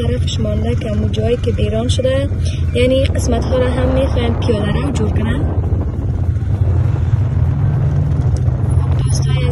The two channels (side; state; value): both; identical; correlation 1.00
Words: مانده که امو جایی که بیران شده، یعنی قسمت ها را هم میخوایم پیاده رو جور کنن. دوستای